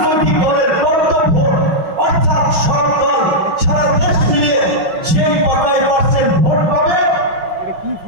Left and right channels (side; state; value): left; late; 5.4 ms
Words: দলের বক্তব্য, অর্থাৎ সরকার সারা দেশ মিলিয়ে সেই কটাই % ভোট পাবে,